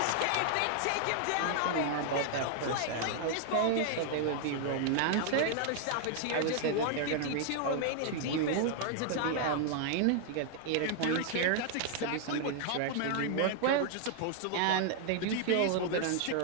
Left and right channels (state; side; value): different; both; correlation 0.00